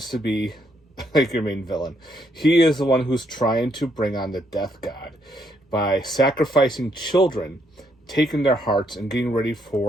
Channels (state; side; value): normal; both; correlation 0.74